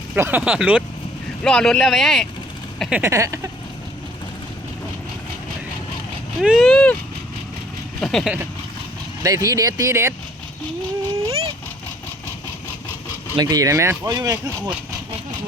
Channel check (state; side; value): normal; both; correlation 0.58